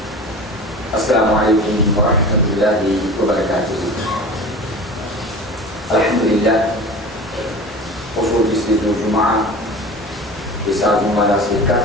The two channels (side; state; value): both; normal; correlation 0.36